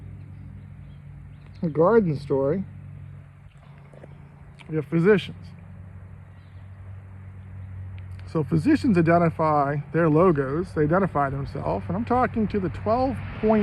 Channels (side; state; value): both; identical; correlation 1.00